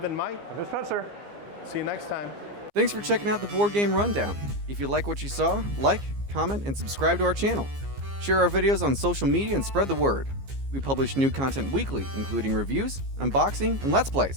Mike. I'm Spencer. See you next time. Thanks for checking out the Board Game Rundown. If you like what you saw, like, comment, and subscribe to our channel. Share our videos on social media and spread the word. We publish new content weekly, including reviews, unboxing, and Let's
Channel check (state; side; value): late; left; 15 ms